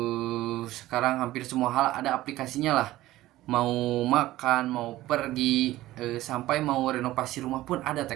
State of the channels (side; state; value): left; quieter; 16.1 dB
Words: hampir semua hal ada aplikasinya lah. Mau makan, mau pergi, sampai mau renovasi rumah pun ada